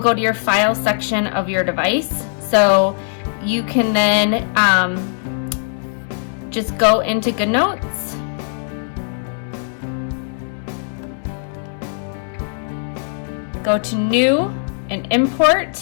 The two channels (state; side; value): silent; right; digital silence